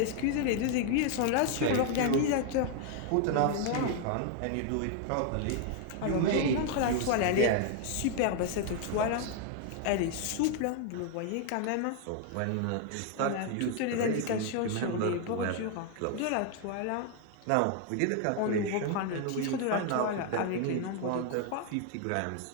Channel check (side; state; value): both; different; correlation 0.00